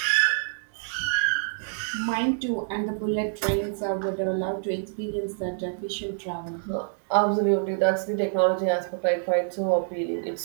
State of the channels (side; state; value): left; silent; digital silence